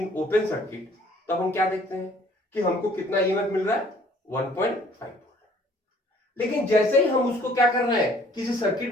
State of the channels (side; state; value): both; normal; correlation 0.57